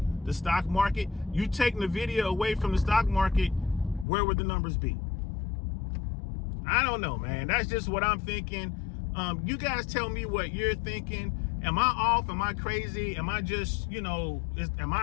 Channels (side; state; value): right; drops out; at 4.0 s